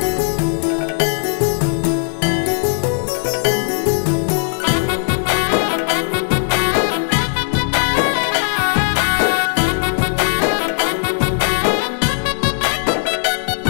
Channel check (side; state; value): right; silent; 68 dB below the other